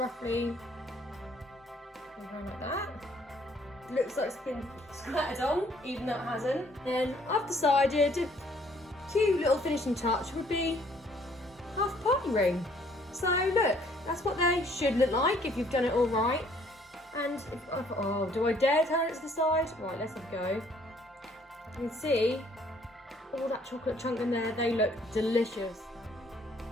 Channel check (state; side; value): normal; both; correlation 0.62